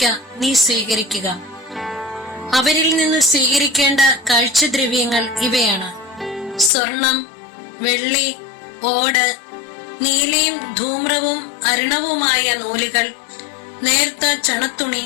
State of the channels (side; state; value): right; drops out; at 6.7 s